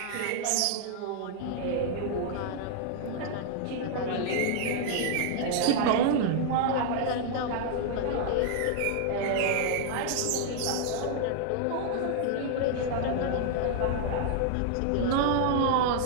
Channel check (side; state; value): both; different; correlation 0.00